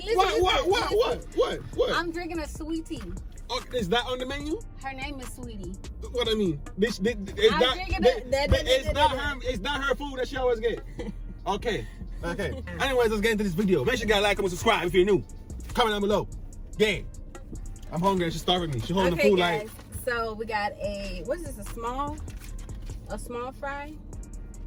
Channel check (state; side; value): identical; both; correlation 1.00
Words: What? I'm drinking a sweet tea. Okay, is that on the menu? Her name is Saweetie. What I mean? It's not her food that she always get. Okay. Anyways, let's get into this video. Make sure you guys like, comment, subscribe if you're new. Comment down below. Yeah. I'm hungry and she's starving me. She's holding the food guys, like. so we got what is this? A small fry?